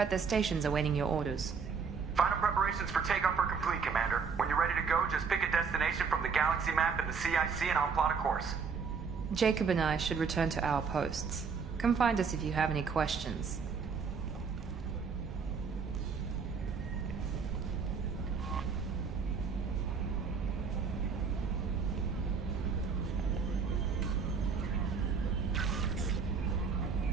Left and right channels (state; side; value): quieter; left; 5.7 dB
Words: their stations awaiting your orders. Final preparations for takeoff are complete, Commander. When you're ready to go, just pick a destination from the galaxy map and the CIC and I'll plot a course. Jacob and I should return to our posts. Come find us if you have any questions.